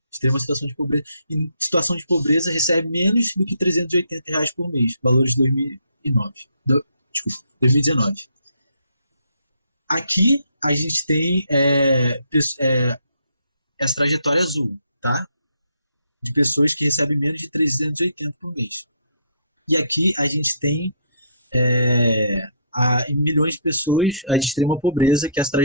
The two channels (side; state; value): both; inverted; correlation -0.66